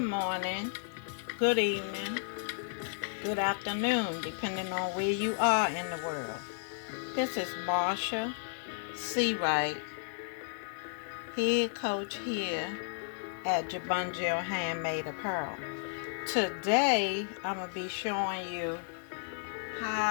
morning, good evening, good afternoon, depending on where you are in the world. This is Marsha C. Wright, head coach here at Jabungel Handmade Apparel. Today, I'm going to be showing you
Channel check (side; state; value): right; silent; digital silence